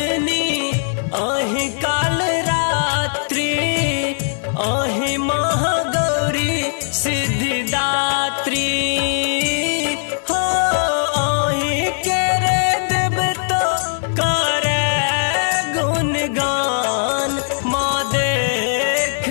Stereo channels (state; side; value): silent; right; digital silence